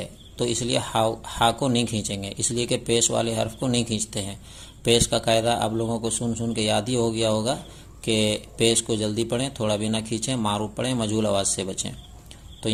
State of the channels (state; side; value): identical; both; correlation 1.00